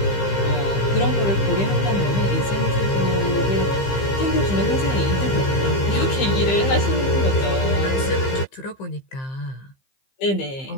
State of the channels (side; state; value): right; late; 15 ms